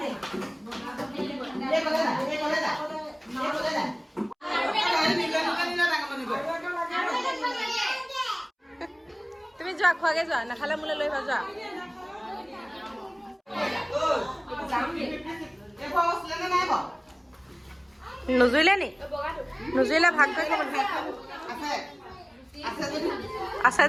তুমি যোৱা খোৱাগে যোৱা নাখালে মোলৈ লৈ যোৱা নুজুৰিলে নি নুজুৰিলে ভাগ কৰি খাব আছে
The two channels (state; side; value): identical; both; correlation 1.00